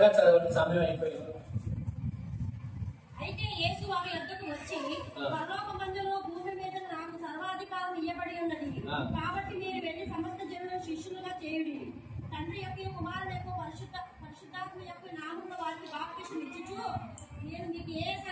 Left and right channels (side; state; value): both; identical; correlation 1.00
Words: చదవండి, సమయం అయిపోయింది. అయితే యేసు వారి యొద్దకు వచ్చి, పరలోకమందును భూమి మీద నాకు సర్వాధికారం ఇవ్వబడి ఉన్నది. కాబట్టి మీరు వెళ్ళి సమస్త జనులను శిష్యులుగా చేయుడి. తండ్రి యొక్క కుమారుడు యొక్క పరిశుద్ధాత్మ యొక్క నామములో వారికి బాప్తిసం ఇచ్చుచు, నేను మీకు ఏ